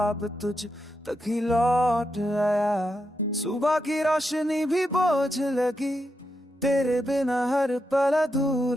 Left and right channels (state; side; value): normal; both; correlation 0.85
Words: तुझ तक ही लौट आया। सुबह की रोशनी भी बोझ लगी, तेरे बिना हर पल